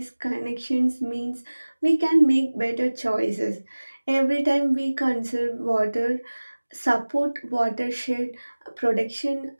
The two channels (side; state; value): both; inverted; correlation -1.00